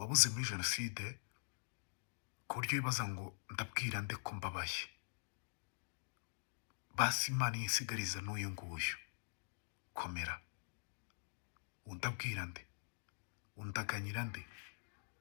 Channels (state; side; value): silent; right; digital silence